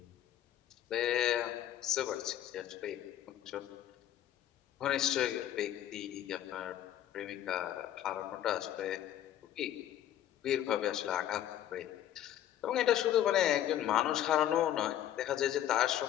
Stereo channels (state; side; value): quieter; right; 11.6 dB